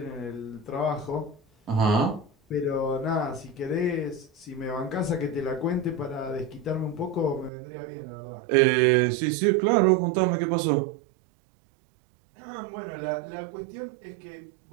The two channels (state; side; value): drops out; left; at 7.5 s